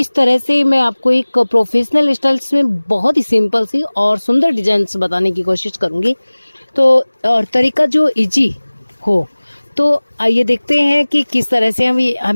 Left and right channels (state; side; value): inverted; both; correlation -1.00